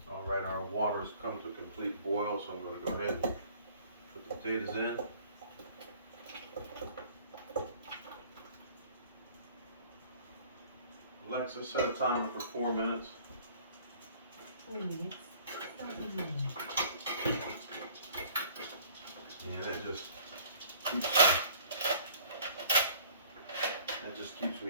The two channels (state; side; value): inverted; both; correlation -0.53